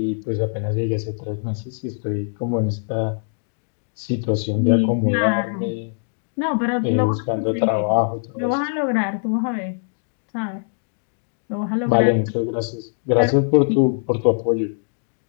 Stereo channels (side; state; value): right; silent; digital silence